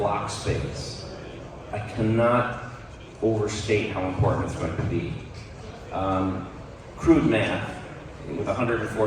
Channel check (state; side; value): identical; both; correlation 1.00